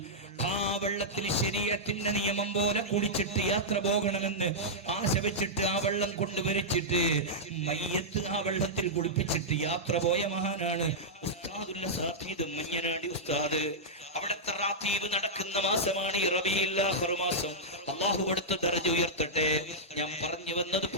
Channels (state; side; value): normal; both; correlation -0.09